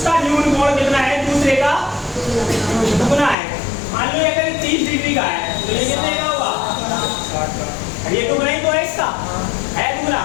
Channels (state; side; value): drops out; right; at 3.4 s